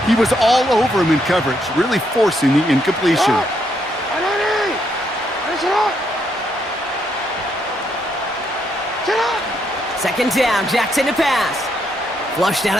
He was all over him in coverage, really forcing the incompletion. Second down, Jackson to pass. Flushed out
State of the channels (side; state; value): both; normal; correlation 0.76